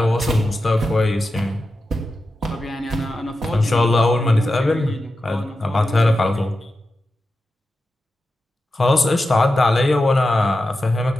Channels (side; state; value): both; normal; correlation 0.91